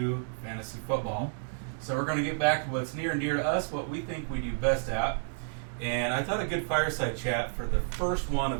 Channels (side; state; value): left; silent; digital silence